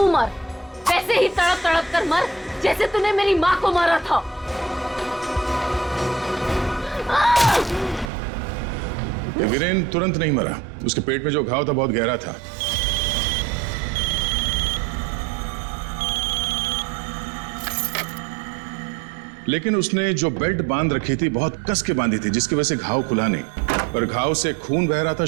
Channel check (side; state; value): left; drops out; at 8.1 s